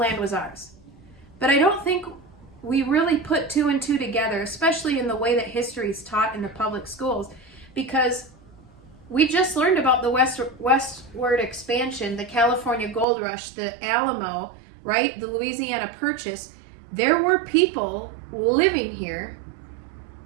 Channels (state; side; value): drops out; left; at 13.1 s